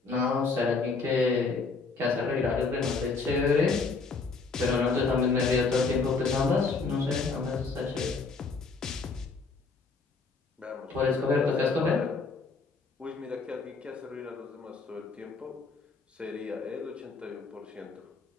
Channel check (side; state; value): right; quieter; 4.3 dB